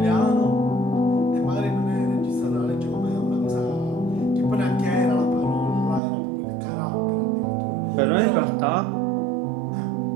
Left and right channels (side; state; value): left; drops out; at 6.0 s